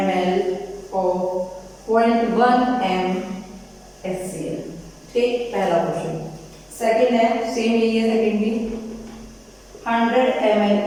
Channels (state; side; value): identical; both; correlation 1.00